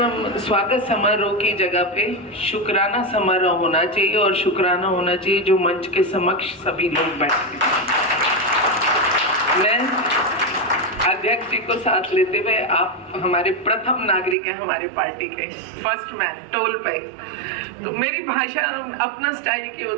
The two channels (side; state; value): left; drops out; at 14.4 s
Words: स्वागत समारोह की जगह पे शुक्राना समारोह होना चाहिए, और शुक्राना होना चाहिए जो मंच के समक्ष सभी लोग बैठे। मैं अध्यक्ष जी को साथ लेते हुए, आप हमारे प्रथम नागरिक हैं, हमारी पार्टी के फर्स्ट मैन टोल पे, तो मेरी भाषा अपना स्टाइल की